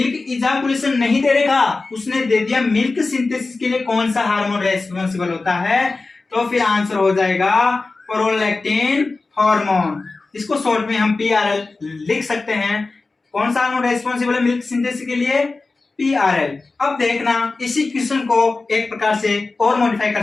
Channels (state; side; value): quieter; right; 3.7 dB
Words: इजाकुलेशन नहीं दे रखा, उसने दे दिया मिल्क सिंथेसिस के लिए कौन सा हार्मोन रेस्पॉन्सिबल होता है। तो फिर आंसर हो जाएगा प्रोलैक्टिन हार्मोन। इसको शॉर्ट में हम पीआरएल लिख सकते हैं। कौन सा हार्मोन रेस्पॉन्सिबल है मिल्क सिंथेसिस के लिए? पीआरएल। अब देखना इसी क्वेश्चन को एक प्रकार से और मॉडिफाई कर